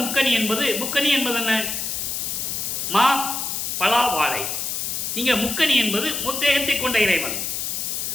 முக்கனி என்பது, முக்கனி என்பது என்ன? மா, பலா, வாழை. இங்க முக்கனி என்பது முத்தேகத்தை கொண்ட இறைவன்.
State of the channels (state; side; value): noise; left; hiss, 2 dB below the sound